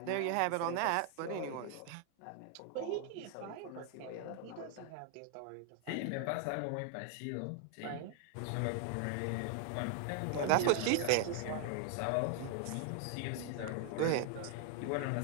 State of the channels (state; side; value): different; both; correlation 0.00